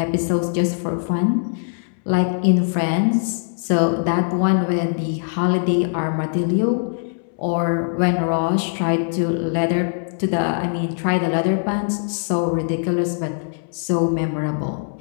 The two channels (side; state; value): right; silent; 65 dB below the other